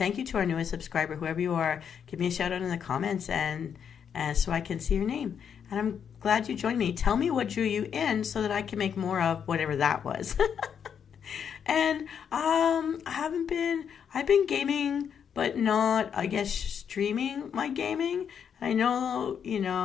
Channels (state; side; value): quieter; right; 7.7 dB